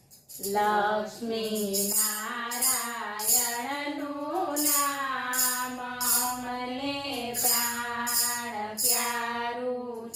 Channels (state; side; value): identical; both; correlation 1.00